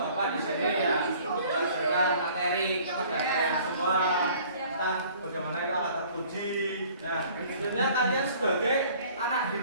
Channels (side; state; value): both; inverted; correlation -0.53